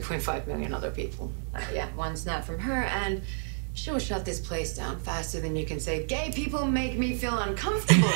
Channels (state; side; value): silent; left; 58 dB below the other